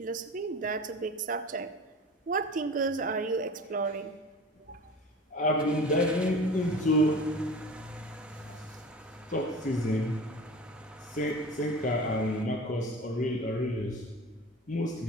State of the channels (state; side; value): normal; both; correlation 0.37